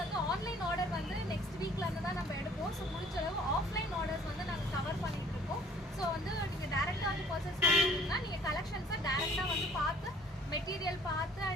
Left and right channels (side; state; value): both; normal; correlation 0.54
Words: வந்து ஆன்லைன் ஆர்டர் வந்து நெக்ஸ்ட் வீக்லேருந்து தான் நம்ம எடுப்போம். ஸோ முடிஞ்ச அளவு ஆஃப்லைன் ஆர்டர்ஸ் வந்து நாங்கள் கவர் பண்ணிகிட்டு இருக்கோம். ஸோ வந்து நீங்கள் டேரெக்டாக வந்து பர்ச்சேஸ் பண்ணிட்டீங்கன்னா நீங்கள் கலெக்ஷன்ஸை டேரெக்டாக வந்து பார்த்து மெட்டீரியல் பார்த்து